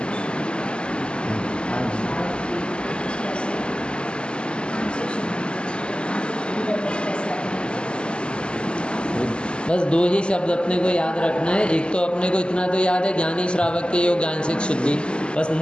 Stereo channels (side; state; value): right; late; 0.051 ms